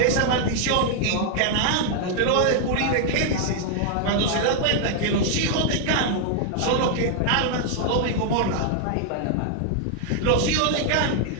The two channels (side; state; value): both; different; correlation 0.00